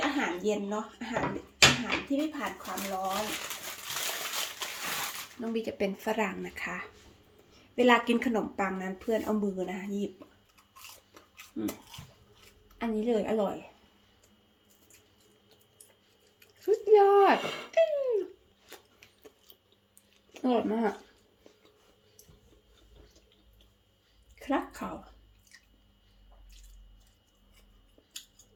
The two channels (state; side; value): identical; both; correlation 1.00